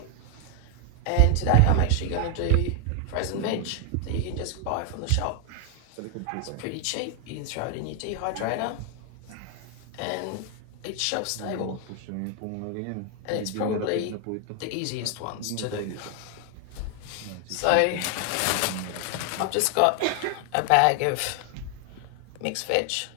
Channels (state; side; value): different; both; correlation 0.00